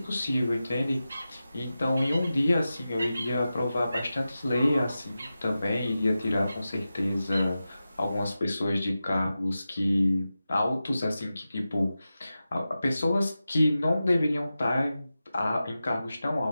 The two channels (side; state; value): both; inverted; correlation -0.93